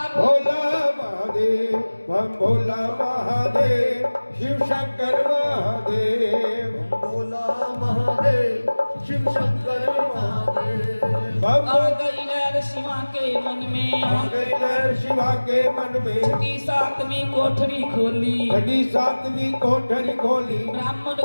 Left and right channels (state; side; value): inverted; both; correlation -1.00